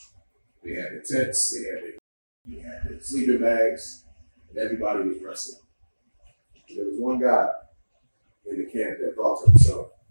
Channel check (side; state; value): both; inverted; correlation -1.00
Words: They had their tents, they had their sleeping bags, and everybody was resting. There was one guy in the camp that thought to himself,